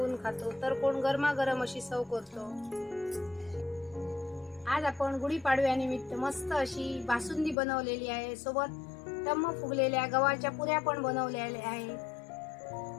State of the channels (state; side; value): drops out; right; at 7.6 s